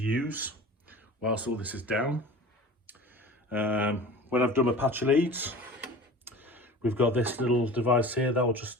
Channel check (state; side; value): normal; both; correlation 0.38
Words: use whilst all this is down. When I've done my patch leads, we've got this little device here that will